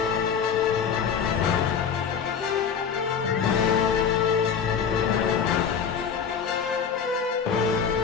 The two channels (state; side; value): quieter; right; 6.9 dB